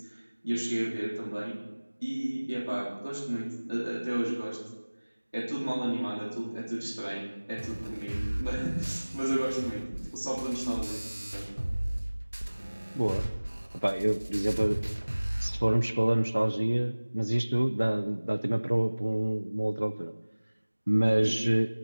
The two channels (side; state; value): both; inverted; correlation -1.00